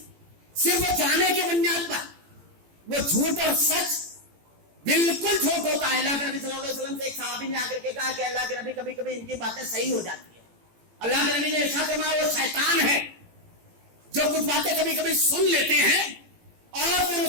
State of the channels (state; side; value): late; left; 18 ms